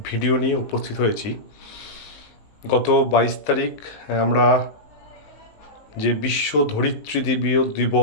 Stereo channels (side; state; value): right; late; 19 ms